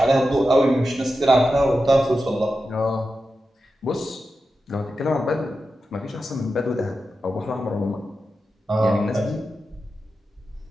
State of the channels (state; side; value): normal; both; correlation 0.91